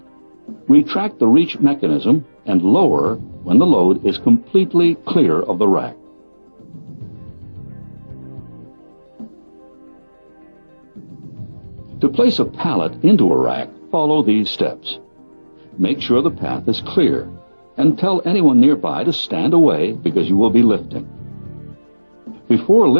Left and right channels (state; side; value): inverted; both; correlation -1.00